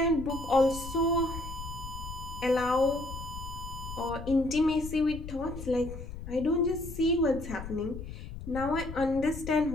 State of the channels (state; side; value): noise; left; rumble, 10 dB below the sound